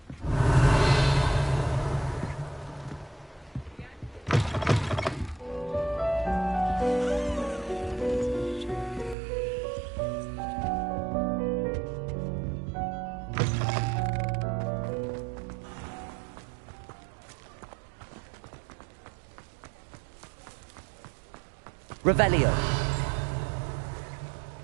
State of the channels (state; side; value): drops out; left; at 9.2 s